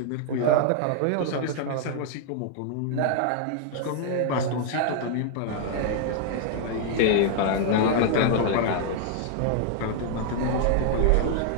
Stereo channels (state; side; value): different; both; correlation 0.00